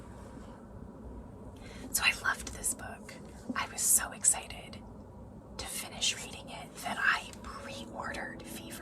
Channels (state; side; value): identical; both; correlation 1.00